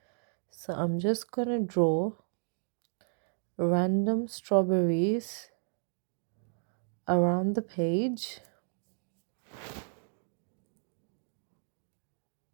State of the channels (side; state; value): left; silent; digital silence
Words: So I'm just going to draw random strawberries around the page.